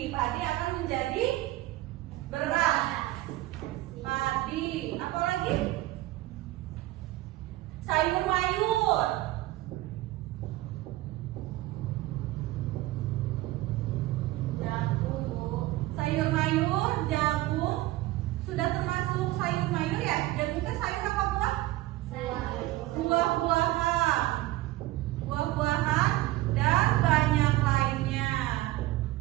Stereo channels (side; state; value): left; quieter; 17.3 dB